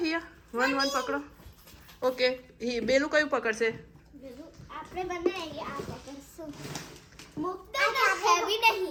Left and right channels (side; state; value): both; identical; correlation 1.00